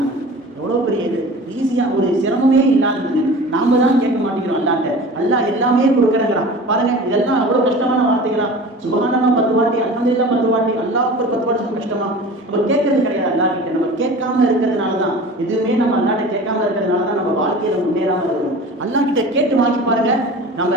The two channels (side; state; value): both; normal; correlation 0.38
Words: எவ்வளோ பெரிய இது, ஈஸியாக ஒரு சிரமமே இல்லாதது. நாம தான் கேட்க மாட்டேங்கிறோம் அல்லாட்ட, அல்லாஹ் எல்லாமே கொடுக்குறேங்கிறான். பாருங்க இதெல்லாம் அவ்வளோ கஷ்டமான வார்த்தைகளா? சுப்ஹானல்லாஹ் 10 வாட்டி, அல்ஹம்துலில்லாஹ் 10 வாட்டி, அல்லாஹ் அக்பர் 10 வாட்டி கஷ்டமா? நம்ம கேட்கறது கிடையாது அல்லாஹ் கிட்ட. நம்ம கேட்காம இருக்கிறதுனால தான், எதுவுமே நம்ம அல்லாட்ட கேட்காம இருக்கிறதுனால தான் நம்ம வாழ்க்கையில முன்னேறாம இருக்கிறோம். அல்லாஹ் கிட்ட கேட்டு வாங்கி பாருங்க. நம்ம